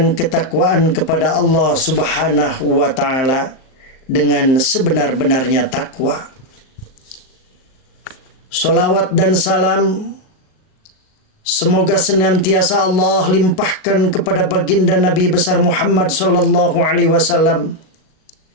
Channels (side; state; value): right; late; 38 ms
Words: ketakwaan kepada Allah Subhanahu wa Ta'ala dengan sebenar-benarnya takwa. Salawat dan salam semoga senantiasa Allah limpahkan kepada baginda Nabi besar Muhammad sallallahu alaihi wasallam,